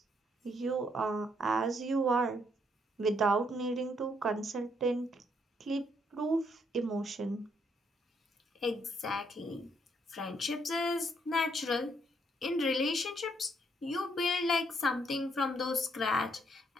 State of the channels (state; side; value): normal; both; correlation 0.72